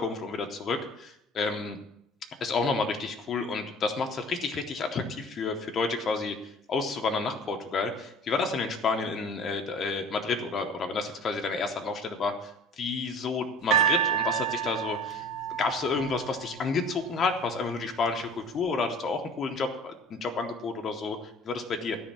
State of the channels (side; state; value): both; normal; correlation 0.45